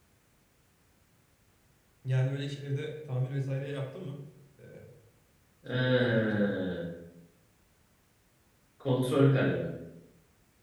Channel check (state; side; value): identical; both; correlation 1.00